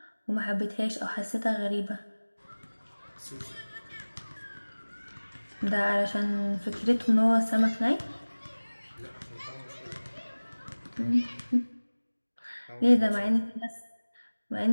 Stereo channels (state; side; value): inverted; both; correlation -1.00